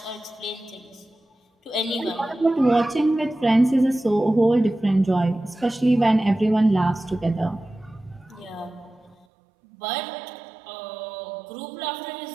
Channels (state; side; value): drops out; left; at 9.2 s